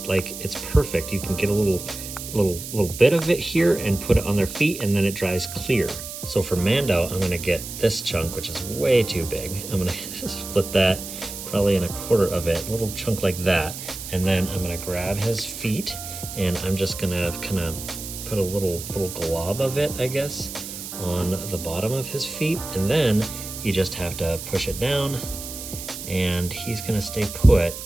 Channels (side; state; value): right; noise; hiss, 9 dB below the sound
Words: like, it's perfect. You can get a little bit of it here and put it on their feet, and then it dries clear. So for Mando, I'm gonna get this chunk, which is way too big. I'm gonna split that probably in a quarter of it, a little chunk like that. And then I'm gonna grab his feet, and I'm just gonna kind of put a little glob of it, I guess, on the bottom of his feet. And then you just have to push it down, and he's gonna stay put.